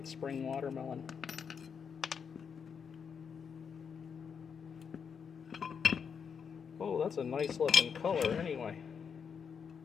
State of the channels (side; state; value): right; quieter; 6.6 dB